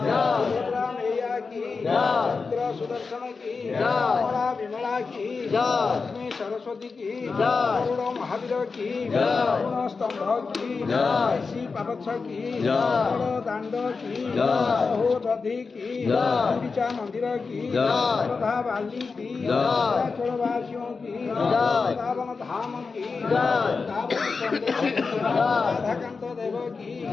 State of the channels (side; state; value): right; quieter; 4.6 dB